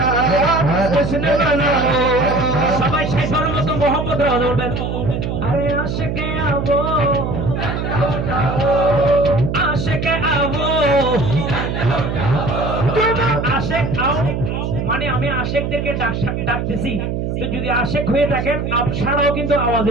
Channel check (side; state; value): right; noise; hum, 2 dB below the sound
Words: जश्न मनाओ। সবাই সেই ধর্মত মোহাম্মদ রাজ বলবেন আরে আশিকে আবো আশেকে আবো আশেক আও মানে আমি আশেকদেরকে ডাকতেছি। তো যদি আশেক হয়ে থাকেন আপনারাও কিন্তু আওয়াজে